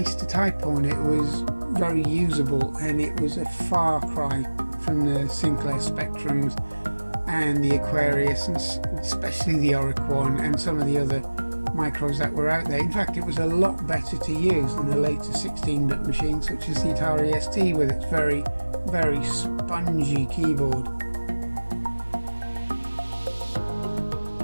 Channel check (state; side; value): inverted; both; correlation -1.00